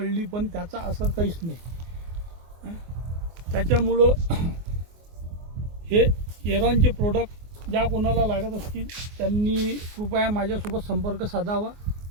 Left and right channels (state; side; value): late; left; 24 ms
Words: पण त्याचा असर काहीच नाही। त्याच्यामुळं हे एरॉनचे प्रोडक्ट ज्या कोणाला लागत असतील त्यांनी कृपया माझ्यासोबत संपर्क साधावा।